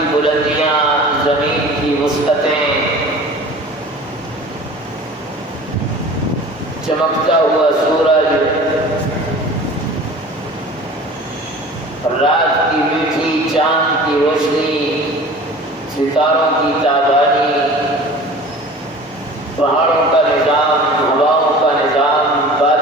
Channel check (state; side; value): normal; both; correlation 0.41